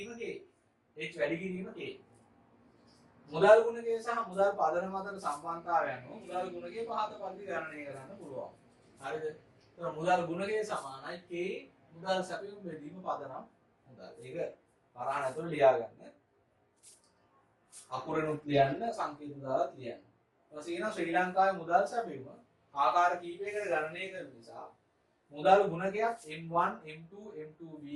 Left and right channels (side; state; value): both; identical; correlation 1.00